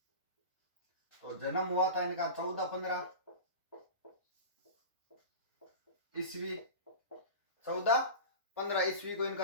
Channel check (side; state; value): both; inverted; correlation -0.30